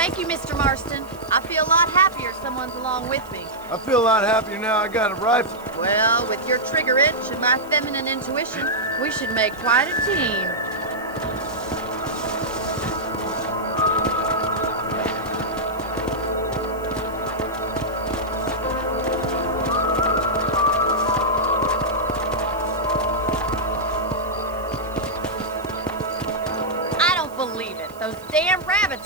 you, Mr. Marston. I feel a lot happier someone's along with me. I feel a lot happier now I got a rifle. Well, with your trigger itch and my feminine intuition, we should make quite a team. I don't believe it. Those damn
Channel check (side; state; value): right; noise; hiss, 23 dB below the sound